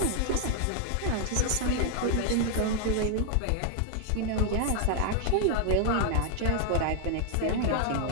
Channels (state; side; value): different; both; correlation 0.00